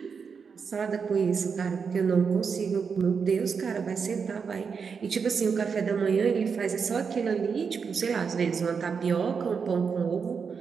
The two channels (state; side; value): quieter; left; 5.9 dB